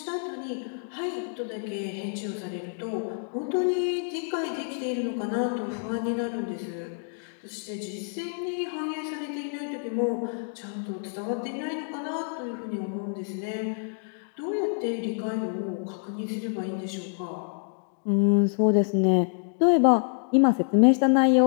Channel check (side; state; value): right; silent; 60 dB below the other